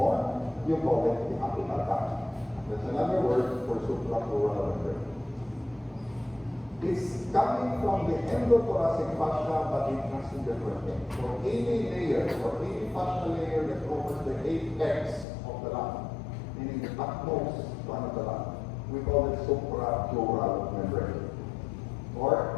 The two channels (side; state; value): right; drops out; at 15.2 s